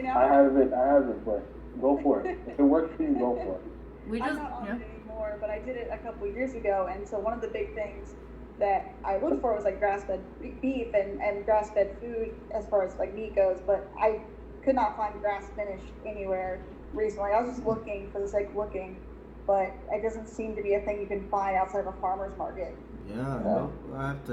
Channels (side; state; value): both; identical; correlation 1.00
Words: now. I haven't, but go for it. If it works for you, go for it. We just I'm not on it anymore, but I did it a couple years ago, and so one of the big things that I looked for was like grass-fed beef and grass-fed food as far as like meat goes, but I could not find grass-finished anywhere recently. I was just looking for the sake of looking, but it doesn't seem to be a thing you can find outside of a farmer's market. Yeah, well, I have